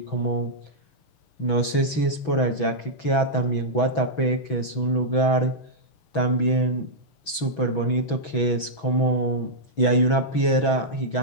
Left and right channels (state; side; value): late; right; 6.1 ms